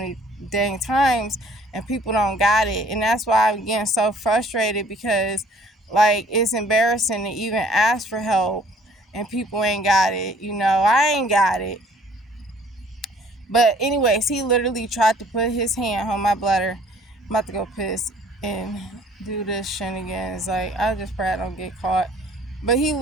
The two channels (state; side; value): normal; both; correlation 0.57